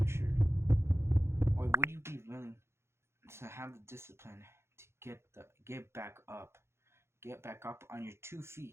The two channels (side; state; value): left; late; 0.13 ms